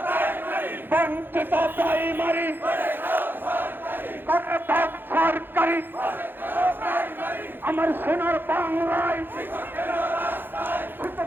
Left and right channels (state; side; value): late; left; 0.098 ms